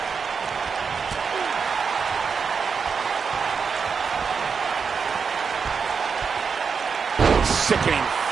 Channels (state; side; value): quieter; left; 5.8 dB